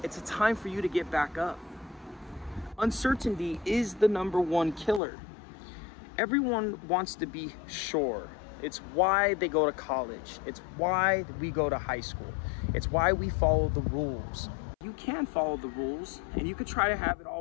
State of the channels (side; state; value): right; drops out; at 5.0 s